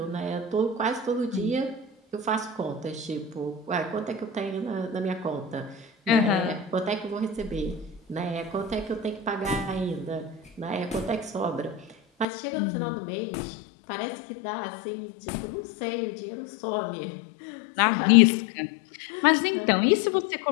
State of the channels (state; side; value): drops out; right; at 12.2 s